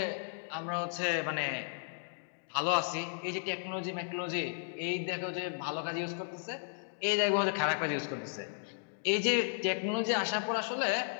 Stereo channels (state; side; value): silent; right; digital silence